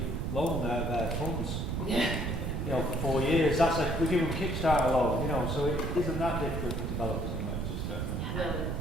loan out of their funds. Yeah. You know, for 4 years. That's like we give them Kickstarter loan. You know, so it isn't that difficult for developers in Manchester.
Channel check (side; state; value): right; noise; rumble, 2 dB below the sound